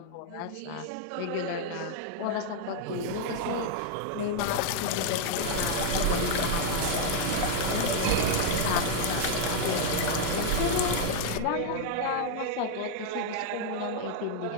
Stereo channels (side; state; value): both; different; correlation 0.00